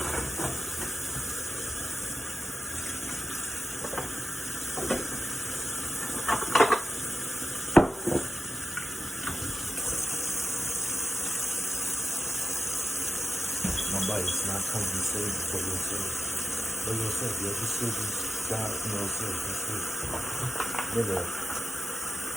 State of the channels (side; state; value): both; normal; correlation 0.93